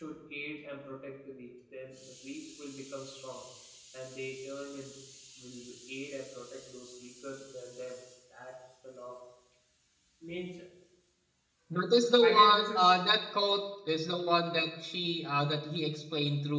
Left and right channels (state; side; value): identical; both; correlation 1.00